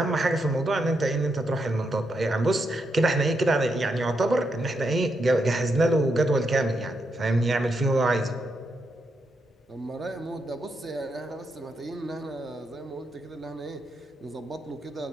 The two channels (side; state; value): both; normal; correlation 0.82